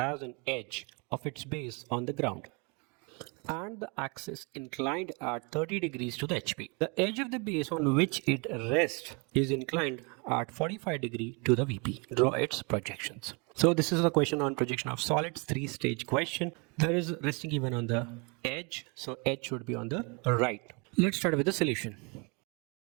an edge of its base on the ground and the axis inclined at 30 degrees to the HP. The edge of the base on which it rests is inclined at 45 degrees to the VP. Draw its projections. So this is a question on projection of solids, 3-stage question. There is resting given on the edge, so edge should be on the right. Let's start with the solution.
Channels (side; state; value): left; quieter; 31.3 dB